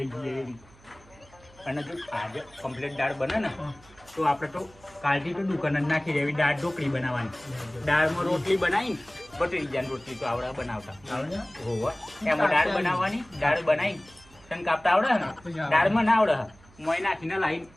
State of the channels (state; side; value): noise; right; hum, 26 dB below the sound